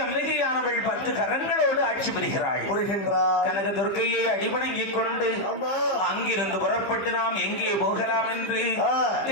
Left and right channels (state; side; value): late; right; 15 ms